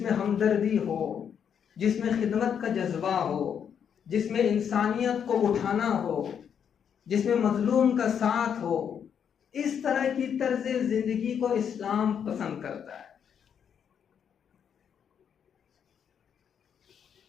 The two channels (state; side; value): quieter; right; 8.0 dB